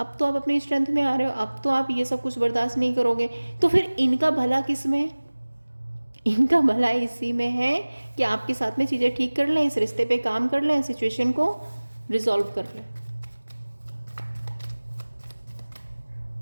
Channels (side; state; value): both; inverted; correlation -1.00